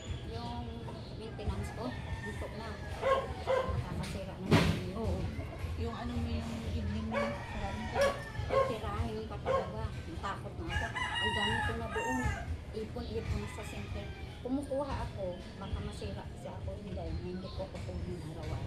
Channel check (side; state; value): both; identical; correlation 1.00